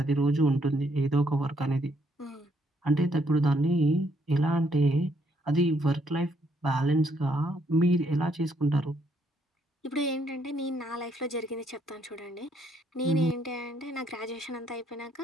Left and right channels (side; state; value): both; normal; correlation 0.71